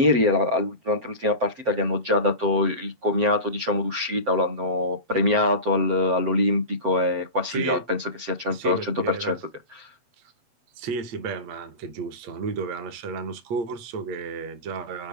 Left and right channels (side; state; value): left; late; 7.8 ms